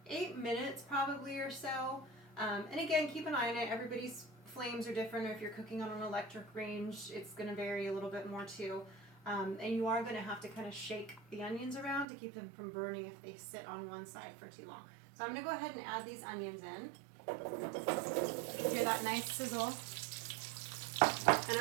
8 minutes probably or so. And again, keep an eye on it. Everybody's flames are different, or if you're cooking on an electric range, it's going to vary a little bit more too. And you are going to have to kind of shake the onions around to keep them from burning if they sit on one side for too long. So I'm going to go ahead and add these onions in. Hear that nice sizzle. And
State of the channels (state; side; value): drops out; left; at 12.1 s